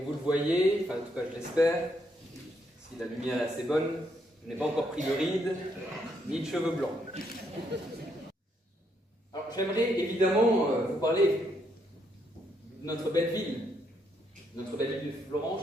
vous le voyez, enfin en tout cas je l'espère, si la lumière est assez bonne, je n'ai pas encore pris de rides, ni de cheveux blancs. Alors j'aimerais évidemment vous parler de notre belle ville de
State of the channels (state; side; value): normal; both; correlation 0.75